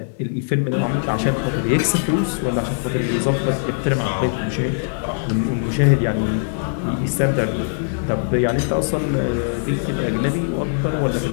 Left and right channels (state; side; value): silent; right; 58 dB below the other